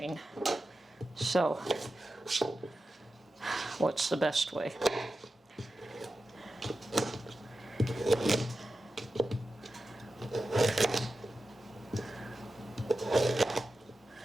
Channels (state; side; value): normal; both; correlation 0.92